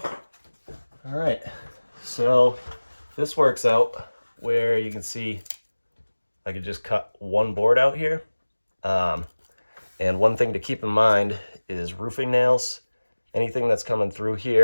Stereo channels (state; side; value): inverted; both; correlation -1.00